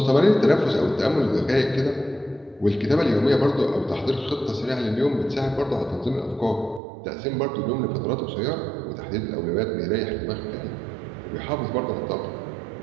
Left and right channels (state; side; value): drops out; left; at 6.8 s